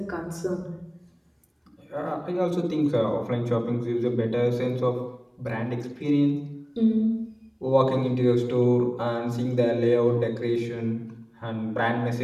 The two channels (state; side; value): identical; both; correlation 1.00